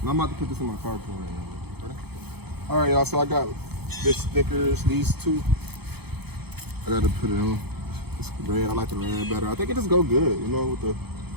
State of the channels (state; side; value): late; left; 0.97 ms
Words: And I'm about to put this in my car right now. All right, y'all, so I got this stickers, these two. I got to put it on. It's red. I like the red better. I think it just go good, you know, with the